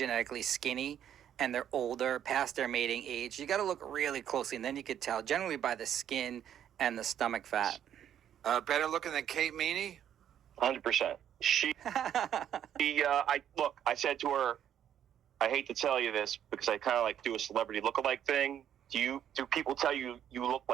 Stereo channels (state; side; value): quieter; left; 10.0 dB